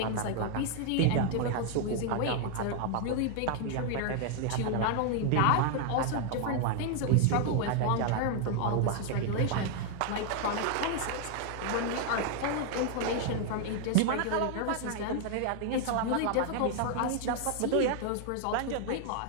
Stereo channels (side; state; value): both; different; correlation 0.00